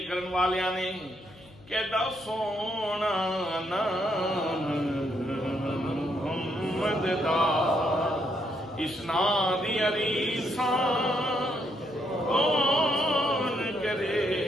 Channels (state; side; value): noise; left; hum, 24 dB below the sound